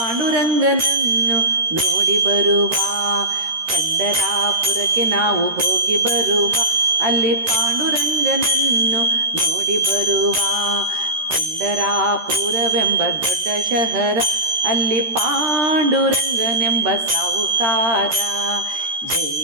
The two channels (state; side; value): late; left; 13 ms